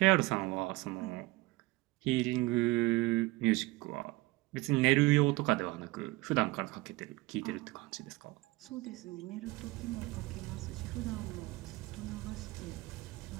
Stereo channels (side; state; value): left; quieter; 21.3 dB